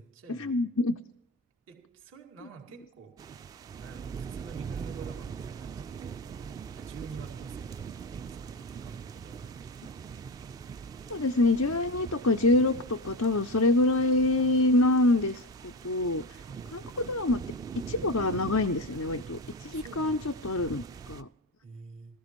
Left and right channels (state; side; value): normal; both; correlation 0.19